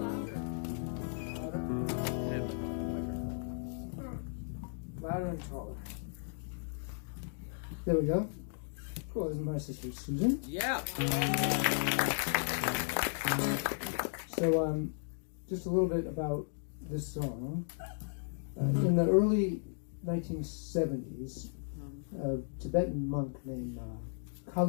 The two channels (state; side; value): silent; right; digital silence